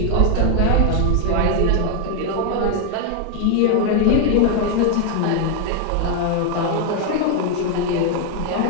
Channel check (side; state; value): both; different; correlation 0.00